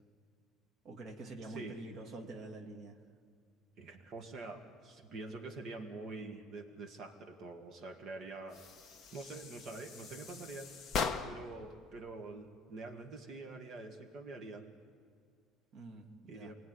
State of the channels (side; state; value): both; normal; correlation 0.53